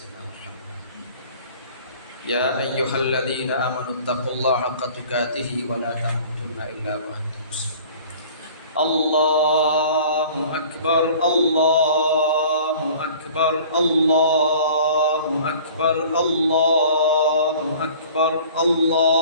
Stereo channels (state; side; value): inverted; both; correlation -0.47